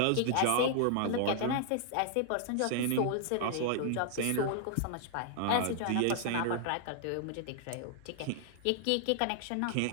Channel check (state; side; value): different; both; correlation 0.00